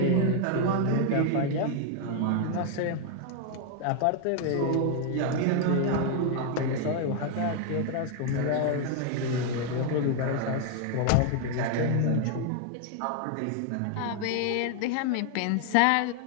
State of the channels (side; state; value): both; different; correlation 0.00